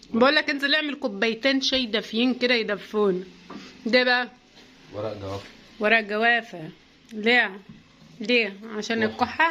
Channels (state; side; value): identical; both; correlation 1.00